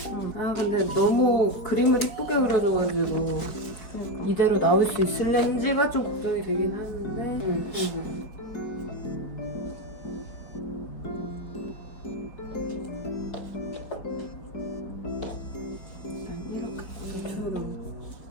응. 아 근데 너무 그림을 이쁘게 그려줘가지고 이대로 나올 수 있을는지가 좀 걱정이 되긴 하는데. 응. 약간 이렇게 고정처럼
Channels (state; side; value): late; right; 4.8 ms